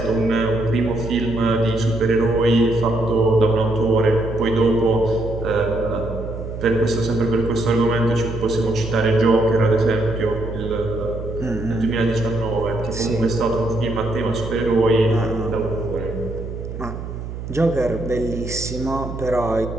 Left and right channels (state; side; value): noise; right; hum, 8 dB below the sound